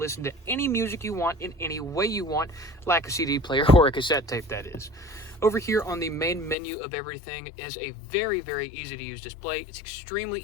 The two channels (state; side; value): drops out; right; at 6.6 s